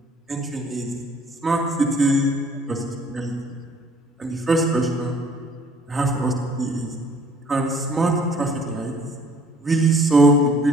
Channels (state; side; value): normal; both; correlation 0.56